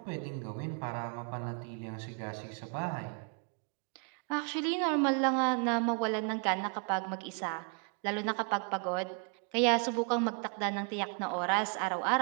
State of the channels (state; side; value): quieter; left; 39.8 dB